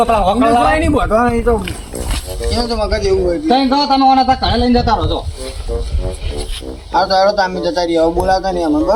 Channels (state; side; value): identical; both; correlation 1.00